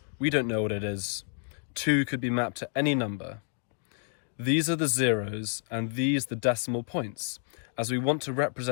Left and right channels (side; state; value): right; silent; 58 dB below the other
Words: We don't know what it is. 2 could be mapped to any number. These are the zeros and these the decimal points, as we want to